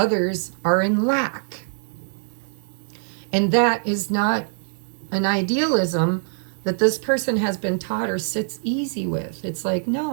are in lack. And that is not an idealism that this person has been taught or sits easy with. It's like,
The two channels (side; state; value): left; silent; digital silence